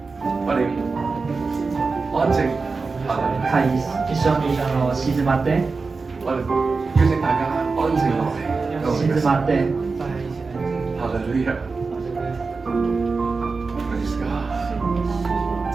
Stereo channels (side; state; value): left; quieter; 4.3 dB